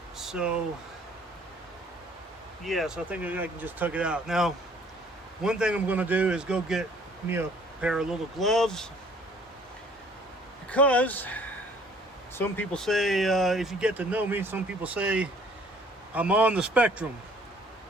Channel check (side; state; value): both; normal; correlation 0.57